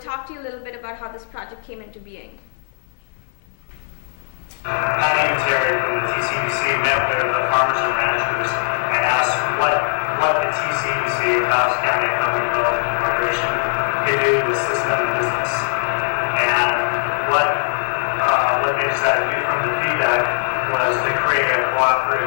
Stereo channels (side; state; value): right; silent; digital silence